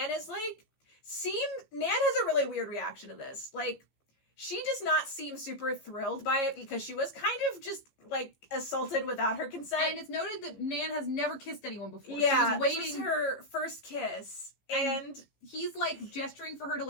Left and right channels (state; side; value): late; right; 15 ms